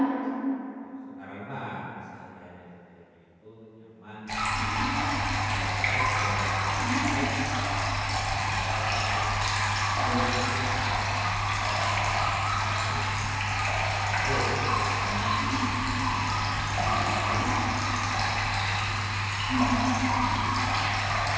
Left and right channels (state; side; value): identical; both; correlation 1.00